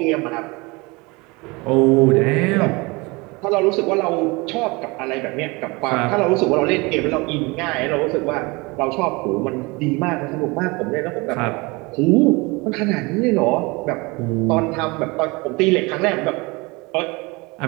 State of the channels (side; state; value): left; quieter; 25.6 dB